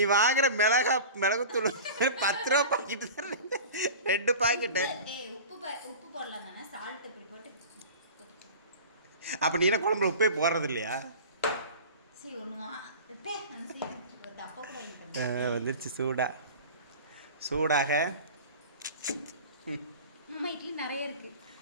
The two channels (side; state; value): both; inverted; correlation -0.36